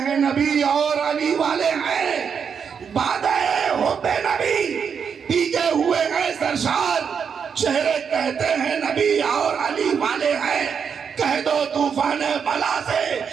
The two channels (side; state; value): left; quieter; 6.8 dB